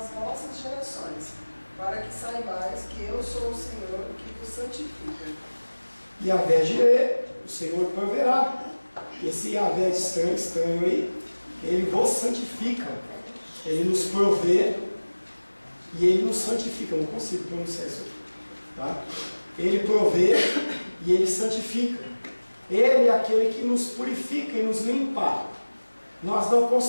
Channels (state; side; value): inverted; both; correlation -1.00